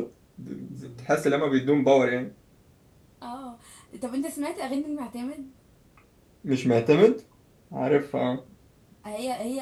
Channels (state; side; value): identical; both; correlation 1.00